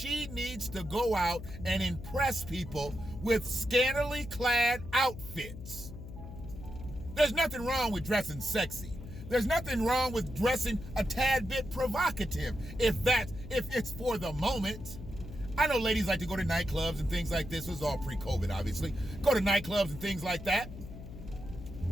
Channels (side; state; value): left; noise; hum, 12 dB below the sound